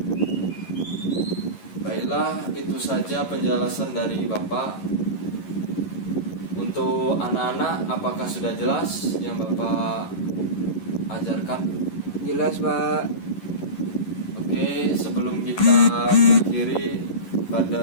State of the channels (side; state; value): right; late; 11 ms